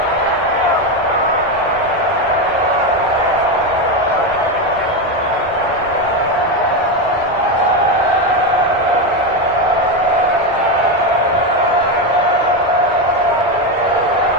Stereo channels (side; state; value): both; normal; correlation 0.11